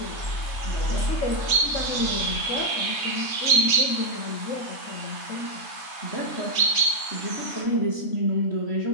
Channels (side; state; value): right; late; 3.3 ms